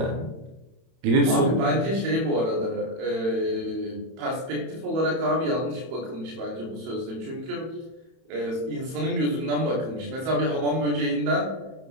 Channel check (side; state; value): left; late; 31 ms